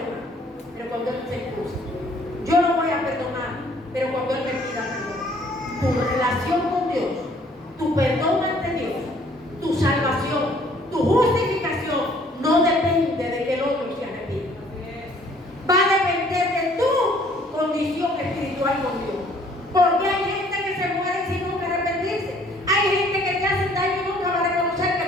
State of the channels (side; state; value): both; normal; correlation 0.59